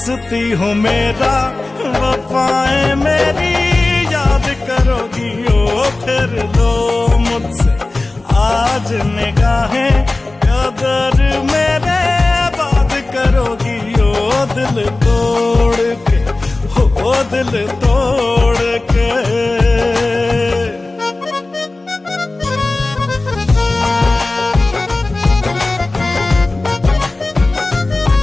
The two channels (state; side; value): quieter; right; 3.1 dB